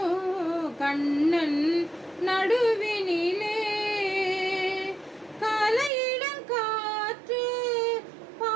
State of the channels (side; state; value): left; drops out; at 5.9 s